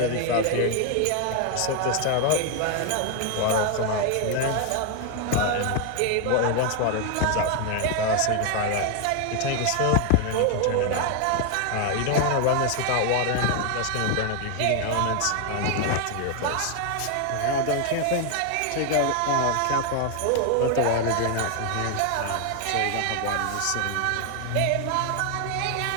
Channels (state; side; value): different; both; correlation 0.00